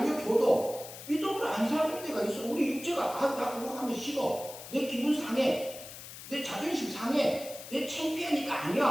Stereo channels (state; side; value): noise; left; hiss, 13 dB below the sound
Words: 믿음으로 안 사는 데가 있어. 우리 육체가 나 그거 하면 싫어, 내 기분 상해, 내 자존심 상해, 내 창피하니까